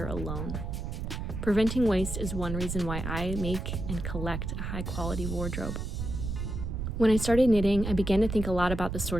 alone. Preventing waste is one reason why I make and collect a high-quality wardrobe. When I started knitting, I began to think a lot about the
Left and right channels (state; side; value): noise; right; rumble, 4 dB below the sound